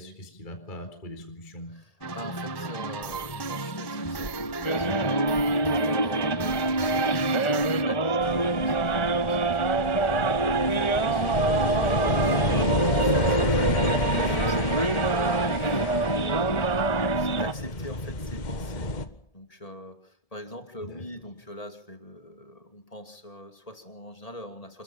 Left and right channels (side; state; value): right; late; 1.7 ms